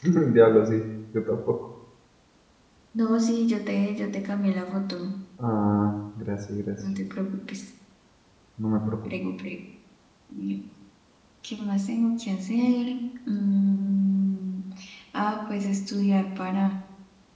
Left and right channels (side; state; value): both; identical; correlation 1.00